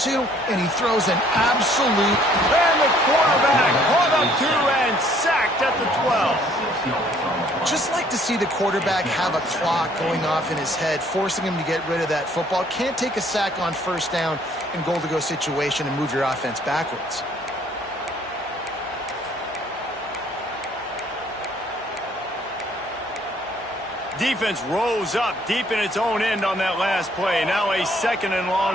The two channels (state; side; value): normal; both; correlation 0.61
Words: and he throws an absolute... And the quarterback caught up to and sacked at the 12. Just like to see the quarterback have a clock going off in his head, forcing him to get rid of that football. Can't take a sack on first down in goal-to-go situation and move your offense backwards. Defense rose up deep in its own end on that last play. Now a second and